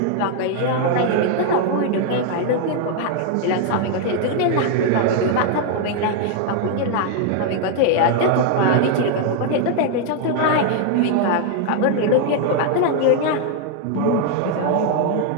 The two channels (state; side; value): different; both; correlation 0.00